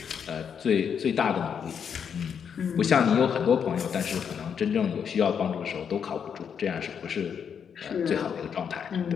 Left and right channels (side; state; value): right; quieter; 7.4 dB